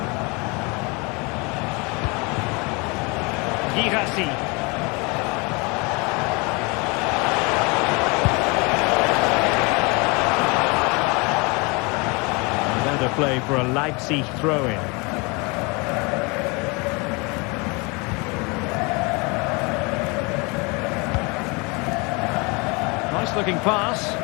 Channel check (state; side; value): quieter; right; 28.7 dB